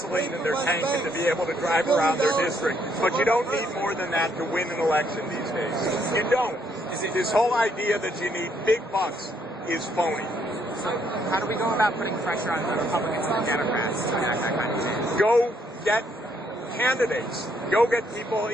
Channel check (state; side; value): normal; both; correlation 0.71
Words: in their tank and to be able to drive around their district. But you don't need more than that to win an election these days. You don't. This whole idea that you need big bucks is phony. So how do we go about putting pressure on the Republicans and the Democrats to enact that kind of change? Go get candidates. Go get people,